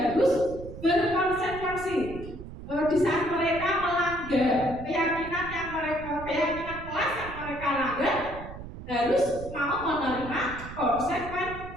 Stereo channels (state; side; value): noise; right; rumble, 12 dB below the sound